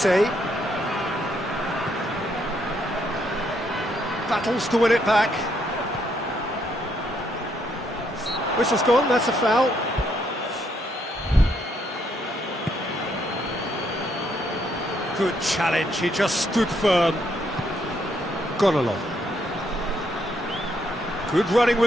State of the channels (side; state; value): both; normal; correlation 0.73